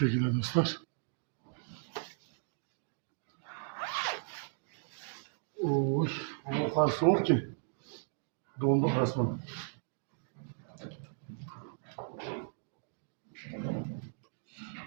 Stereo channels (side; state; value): left; silent; digital silence